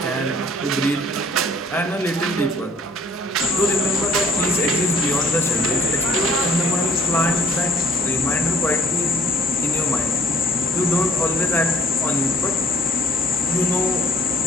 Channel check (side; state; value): both; normal; correlation 0.58